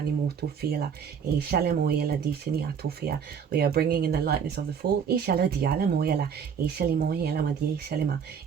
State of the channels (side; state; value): left; quieter; 7.1 dB